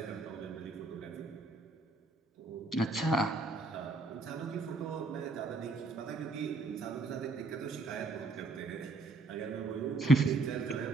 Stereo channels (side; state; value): left; quieter; 3.2 dB